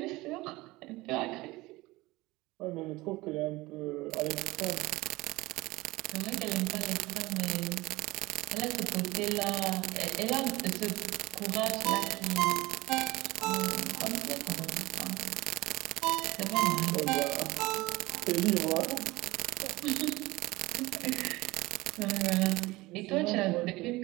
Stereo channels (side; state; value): left; quieter; 20.4 dB